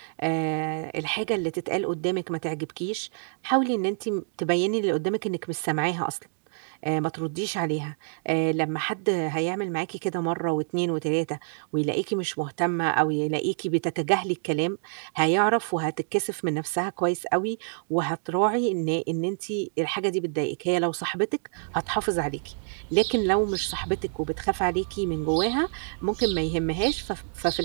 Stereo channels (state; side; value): silent; left; digital silence